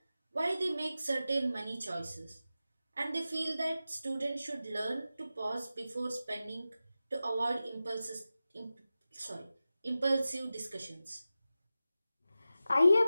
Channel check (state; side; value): inverted; both; correlation -0.94